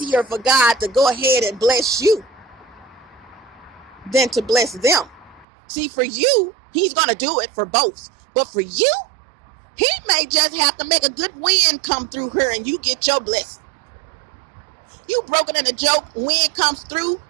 for God to go ahead and bless you than to bless them. See, for you, he's going to do it for both. But for you, he may just have to make a good wind come through here and you get your blessing. You broken in a joke, wind comes through,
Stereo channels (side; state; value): left; drops out; at 5.5 s